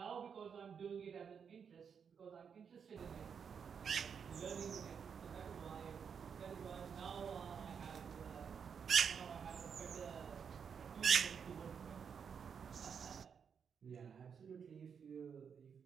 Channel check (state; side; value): quieter; left; 6.9 dB